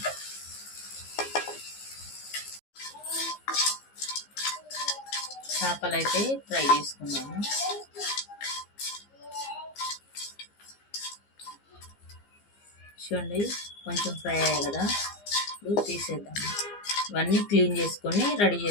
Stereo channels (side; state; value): right; late; 15 ms